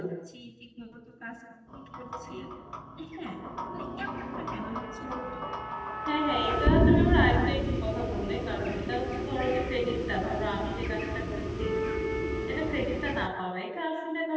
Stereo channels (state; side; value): identical; both; correlation 1.00